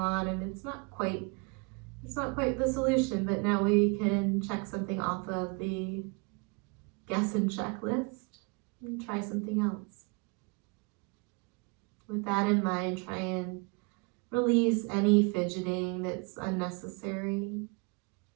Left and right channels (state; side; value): quieter; left; 31.6 dB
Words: and it's not quite the solution, but now we can check something off of the guess and checklist and try something else. With that in mind, try and release any fidgeting that's unnecessary.